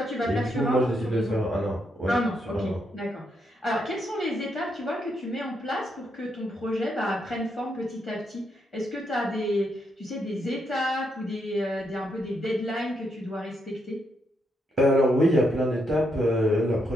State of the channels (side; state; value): both; normal; correlation 0.79